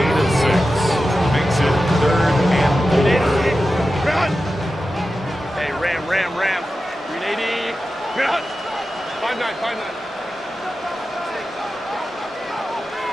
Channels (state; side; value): normal; both; correlation 0.92